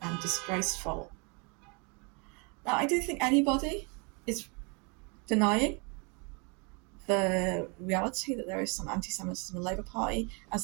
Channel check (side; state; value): left; quieter; 33.1 dB